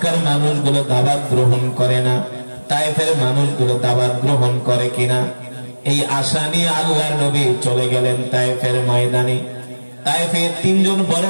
মানুষগুলো দাওয়াত গ্রহণ করে না, তায়েফের মানুষগুলো দাওয়াত গ্রহণ করে কিনা, এই আশা নিয়ে আল্লাহর নবী চলে গেলেন তায়েফের ময়দানে। তায়েফে তিনজন বড়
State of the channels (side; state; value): both; inverted; correlation -1.00